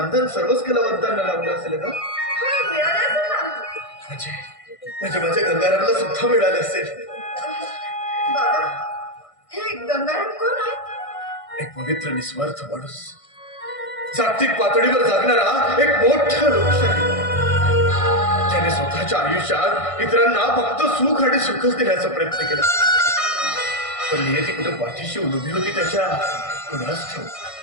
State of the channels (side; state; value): right; late; 1.6 ms